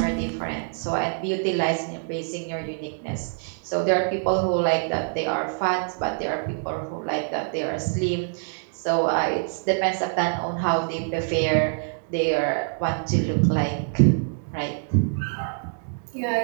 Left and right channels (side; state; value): left; silent; 62 dB below the other